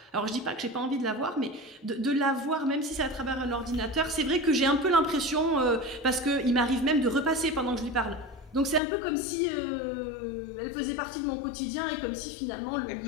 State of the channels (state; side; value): drops out; right; at 8.8 s